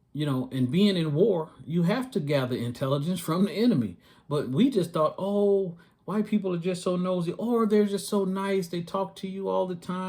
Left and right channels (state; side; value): identical; both; correlation 1.00